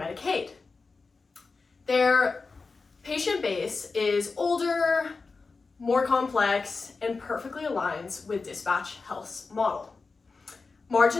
Their patient base is older, more complex, and perfectly aligns with Dispatch Health's model.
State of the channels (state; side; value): quieter; right; 4.2 dB